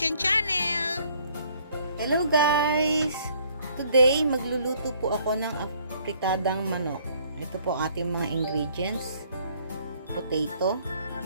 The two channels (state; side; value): inverted; both; correlation -0.62